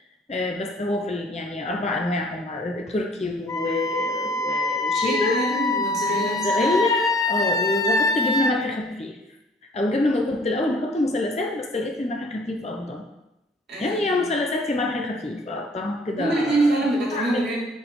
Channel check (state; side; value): normal; both; correlation 0.55